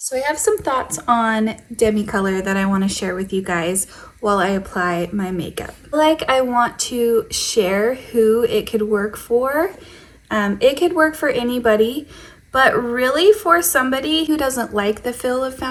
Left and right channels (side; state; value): both; identical; correlation 1.00